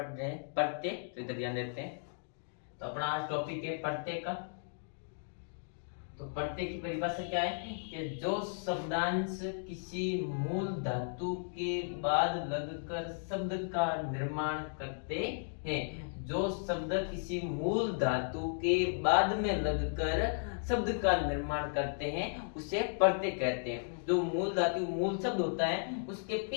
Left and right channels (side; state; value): right; silent; digital silence